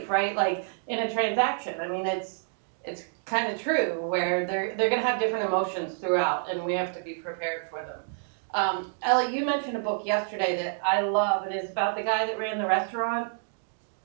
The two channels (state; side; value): silent; left; digital silence